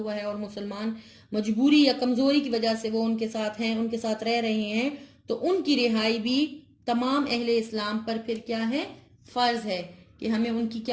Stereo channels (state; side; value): identical; both; correlation 1.00